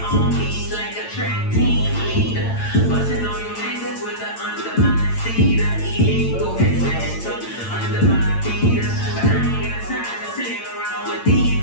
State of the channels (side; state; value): right; late; 8.8 ms